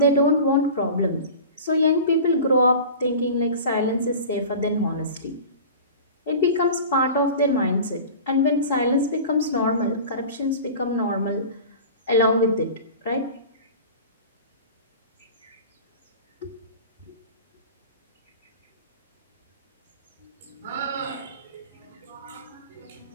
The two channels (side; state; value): both; inverted; correlation -0.36